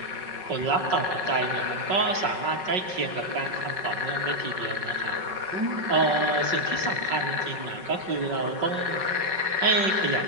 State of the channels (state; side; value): late; left; 5.3 ms